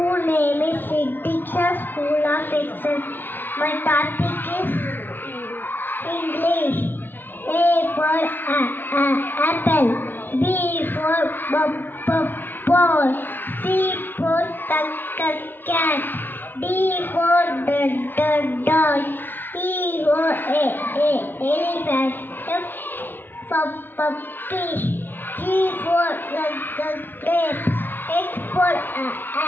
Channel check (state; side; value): late; right; 0.094 ms